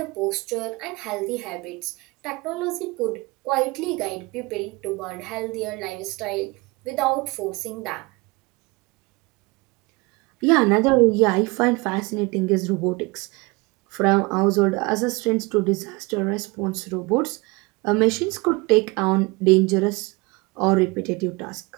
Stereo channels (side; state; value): left; quieter; 25.5 dB